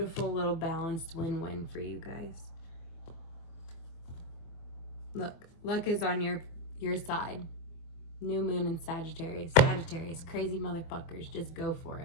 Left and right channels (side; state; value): right; late; 24 ms